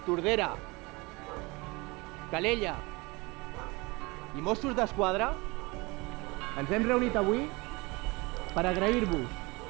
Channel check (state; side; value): quieter; left; 25.2 dB